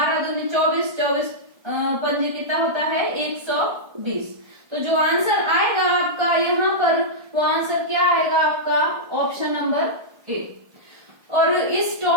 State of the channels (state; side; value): late; left; 1.3 ms